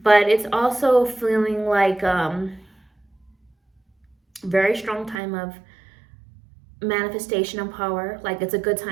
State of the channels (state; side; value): drops out; left; at 5.2 s